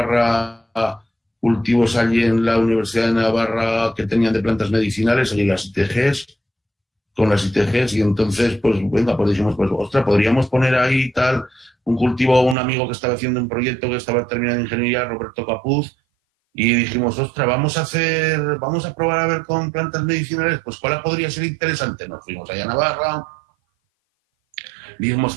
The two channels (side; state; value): left; drops out; at 12.6 s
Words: cultivos allí en la Universidad de Navarra que tenían de plantas medicinales, allí las ITGs, con las ITGs, y entonces, pues, venga, pues dijimos, pues, ostras, podríamos poner ahí tal, un cultivo, un amigo que estaba haciendo un proyecto que estaba terminando ingeniería, Roberto Capuz, y dijimos, ostras, vamos a probar a ver con plantas medicinales, pues, ¿cuál podría ser interesante? Nos fuimos allá a Navarra, vimos